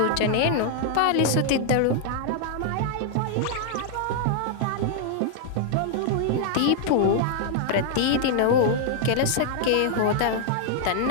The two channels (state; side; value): different; both; correlation 0.00